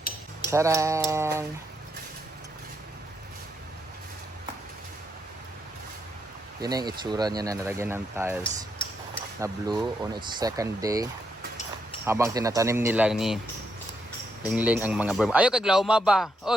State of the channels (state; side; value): normal; both; correlation 0.79